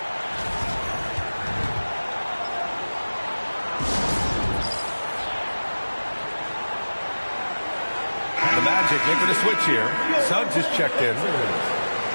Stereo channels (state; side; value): inverted; both; correlation -1.00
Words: The Magic making a switch here. Suggs is checked in.